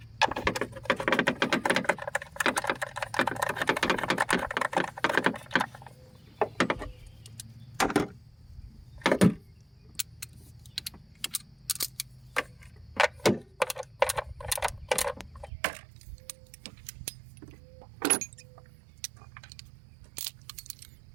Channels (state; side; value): drops out; left; at 15.5 s